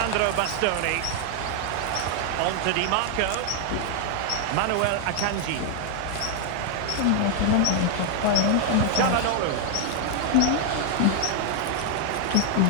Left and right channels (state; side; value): different; both; correlation 0.00